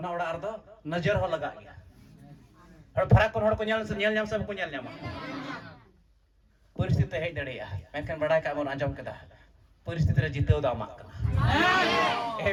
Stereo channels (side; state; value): both; identical; correlation 1.00